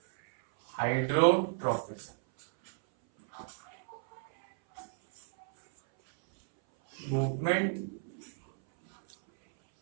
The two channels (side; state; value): left; silent; 56 dB below the other